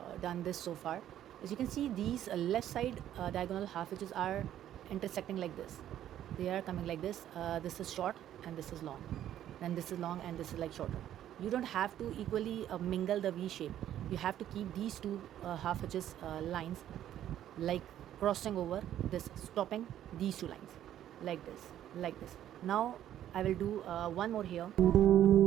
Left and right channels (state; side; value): quieter; left; 11.5 dB